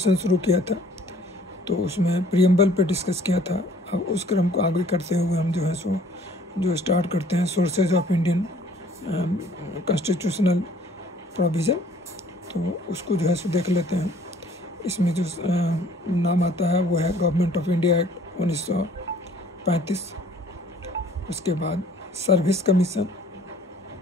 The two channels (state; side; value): normal; both; correlation 0.56